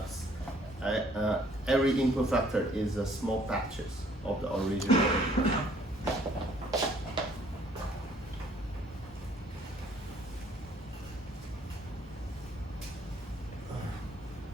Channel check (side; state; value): both; normal; correlation 0.61